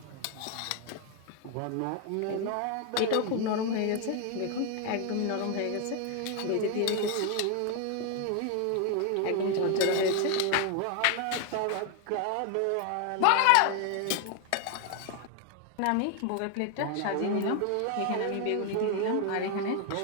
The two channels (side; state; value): both; different; correlation 0.01